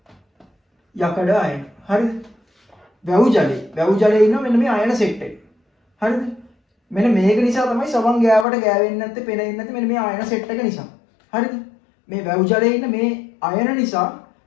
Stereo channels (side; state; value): right; drops out; at 8.5 s